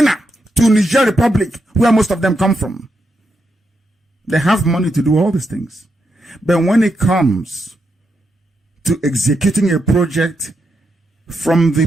to Niger Republic, where most of them come from. They have money to do all these things. But when it comes to executing a project from the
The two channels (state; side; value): normal; both; correlation 0.83